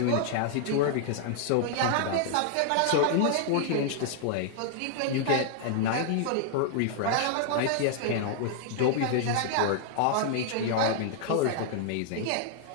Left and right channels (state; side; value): different; both; correlation 0.00